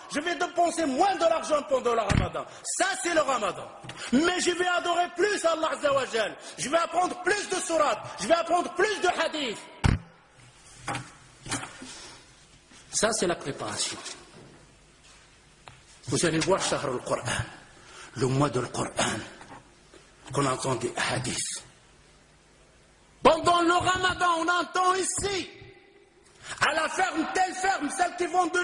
Je vais dépenser moins de l'argent pendant le Ramadan. Ça, c'est le Ramadan. Mais je vais adorer plus Allah Azza wa Jal. Je vais apprendre plus de sourates. Je vais apprendre plus de hadiths. Ça, c'est la préparation. Vous allez voir Shahr al-Qur'an, le mois de Qur'an, qu'on entend des hadiths. Pendant le Ramadan, on entend ici, à la ferme, telle ferme, celles qui vendent de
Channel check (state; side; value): identical; both; correlation 1.00